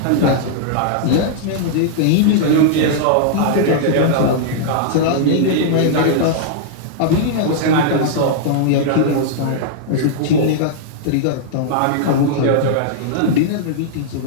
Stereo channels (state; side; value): different; both; correlation -0.02